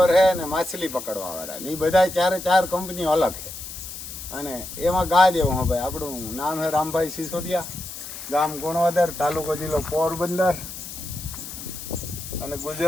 હે ને માછલી પકડવા વાળા ને એ બધા 4 કંપનીઓ અલગ છે. અને એમાં ગા જેવું હે ભાઈ. આપણું નામ હે રામભાઈ સિસોદિયા, ગામ ગુણવદર, તાલુકો જિલ્લો પોરબંદર અને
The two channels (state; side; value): noise; left; hiss, 10 dB below the sound